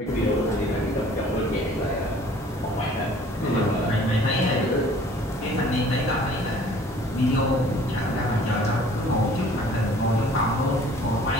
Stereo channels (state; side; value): normal; both; correlation 0.52